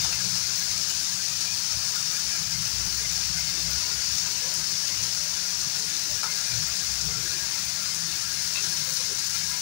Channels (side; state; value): right; silent; digital silence